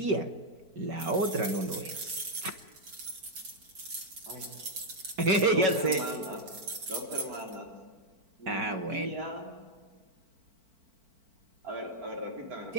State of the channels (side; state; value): left; late; 4.5 ms